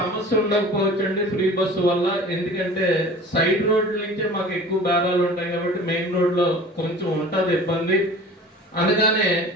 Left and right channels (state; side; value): normal; both; correlation 0.41